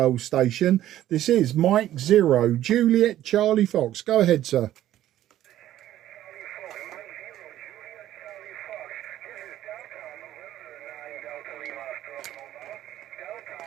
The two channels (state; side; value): quieter; left; 12.9 dB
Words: station. This is Mike 0, Juliet Charlie Fox. Go ahead, sir.